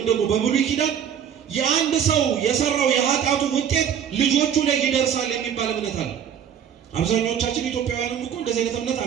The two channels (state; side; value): quieter; left; 8.5 dB